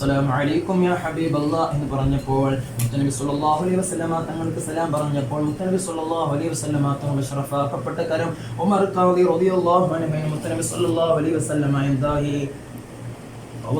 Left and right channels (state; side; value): identical; both; correlation 1.00